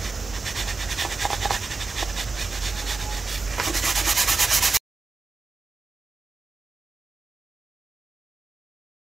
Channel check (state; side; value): quieter; left; 4.2 dB